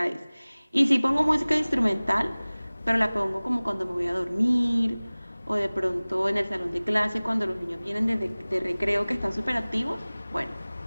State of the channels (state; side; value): inverted; both; correlation -1.00